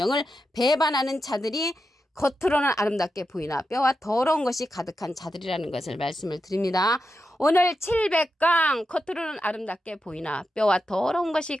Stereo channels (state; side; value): normal; both; correlation 0.88